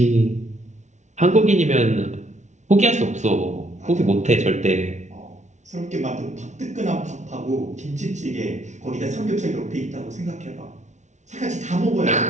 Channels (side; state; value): left; late; 0.34 ms